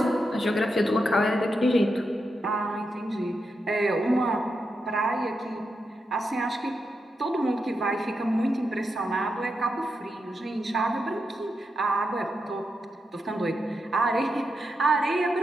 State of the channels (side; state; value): both; normal; correlation 0.86